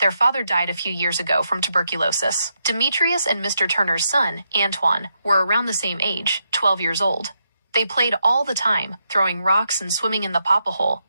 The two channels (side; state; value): both; inverted; correlation -0.82